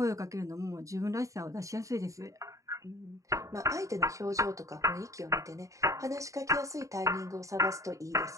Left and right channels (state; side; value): late; left; 0.16 ms